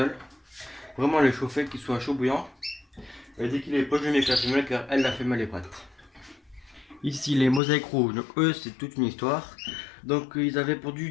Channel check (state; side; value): drops out; right; at 7.6 s